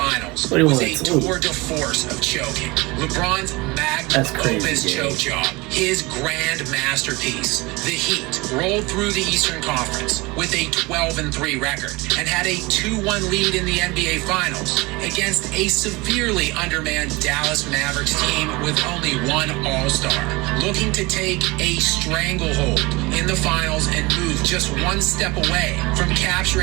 What do you was want a to do? tour de force of choking. LeBron's magnum That's crazy, opus Jay. choke job, his grand masterpiece. The Heat rolled through the Eastern Conference with a 12-3 record and had a 2-1 lead in the NBA Finals against a severely undermanned Dallas Mavericks team with only one All-Star, looking to take a stranglehold in the finals and move just one step away from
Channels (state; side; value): quieter; left; 23.8 dB